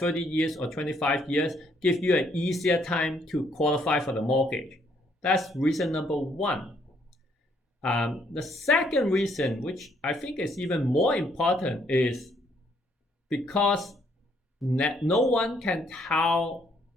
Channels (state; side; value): normal; both; correlation 0.69